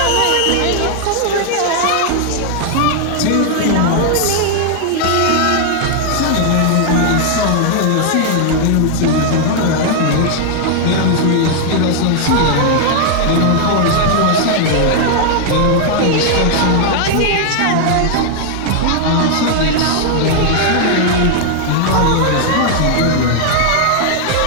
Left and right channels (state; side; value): different; both; correlation 0.00